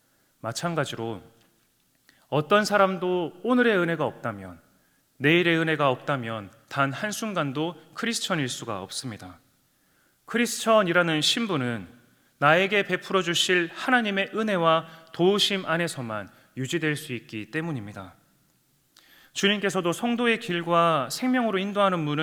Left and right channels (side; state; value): both; identical; correlation 1.00